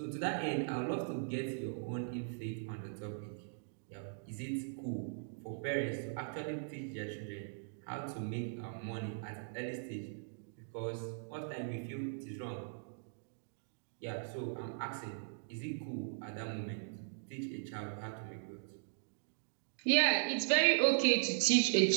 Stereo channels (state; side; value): silent; left; digital silence